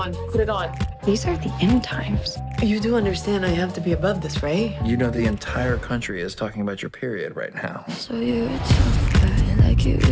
Put it on. These are the end times. You do understand I have to be above this, right? You know the entire country is talking about your period right now. So you're a tough guy, like you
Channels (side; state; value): both; identical; correlation 1.00